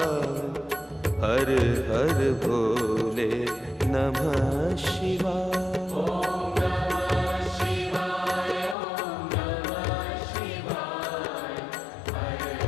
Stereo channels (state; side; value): drops out; right; at 8.8 s